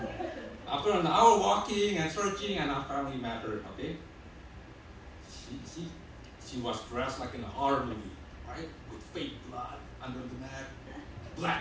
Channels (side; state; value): both; identical; correlation 1.00